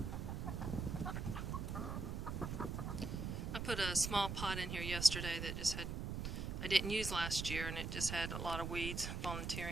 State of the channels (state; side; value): noise; right; rumble, 3 dB below the sound